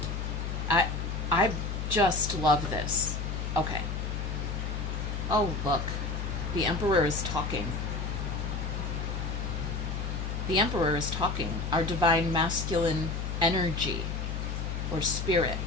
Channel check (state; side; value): noise; left; hum, 3 dB below the sound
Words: I just love this. Okay. Oh, look. The Emperor is talking. The Emperor is talking. Our divine masculine energy or spirit.